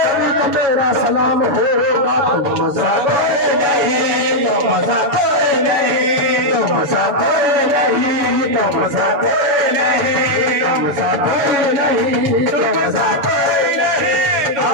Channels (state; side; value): late; left; 6.7 ms